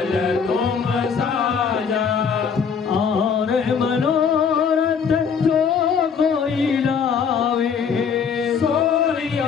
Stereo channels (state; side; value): quieter; right; 6.5 dB